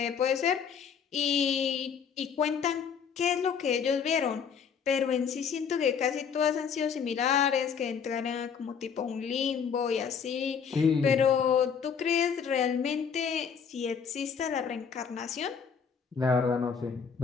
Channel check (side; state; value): right; quieter; 6.8 dB